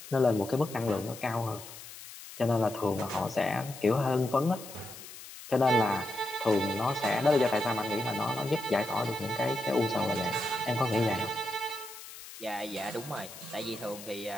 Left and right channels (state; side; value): noise; left; hiss, 14 dB below the sound